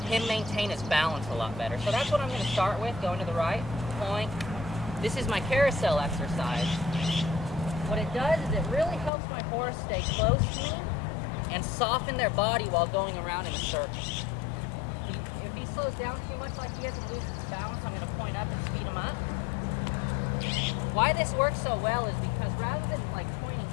him maintain his balance a lot better. So that's what I'm going to start with, going to the right, point. This is my carousel exercise. What it does is it really helps my horse stay close to me and soften their body while going around in a circle. If he slows down too much like he is and loses his balance, I'm going to point up and speed him up. Why this works so well is because rather than like pointing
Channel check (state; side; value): drops out; right; at 9.1 s